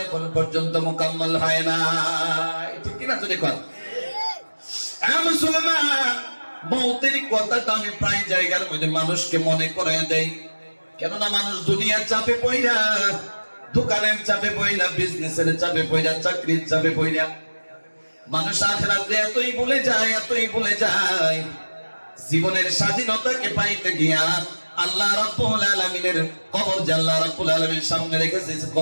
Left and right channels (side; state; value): both; inverted; correlation -1.00